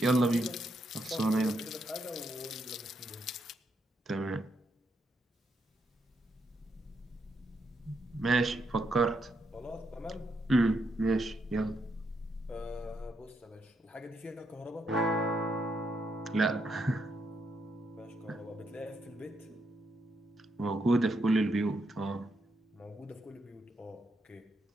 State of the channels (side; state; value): both; normal; correlation 0.79